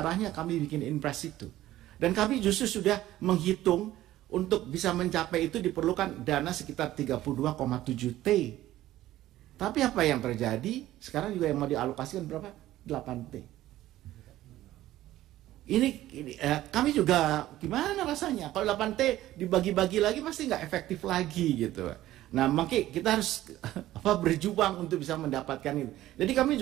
kami bikin Inpres itu. Dan kami justru sudah menghitung untuk bisa mencapai itu diperlukan dana sekitar 32,7 T. Tapi apa yang terjadi? Sekarang juga yang mau dialokasikan berapa? 8 T. Ini kami juga gimana rasanya kalau 8T dibagi-bagi lagi pasti nggak efektif lagi gitu. Nah makanya kita harus berjuang untuk bisa mendapatkan itu. Jadi kami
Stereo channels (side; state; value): left; quieter; 14.6 dB